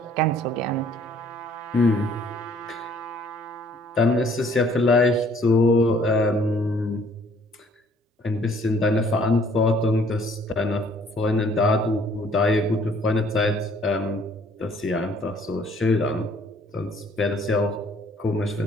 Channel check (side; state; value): both; normal; correlation 0.59